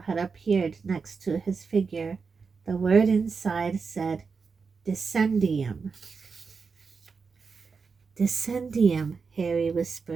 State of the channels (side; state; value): left; quieter; 5.1 dB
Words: had appeared next to his figure. The word inside said, Descendium. Descendium, Harry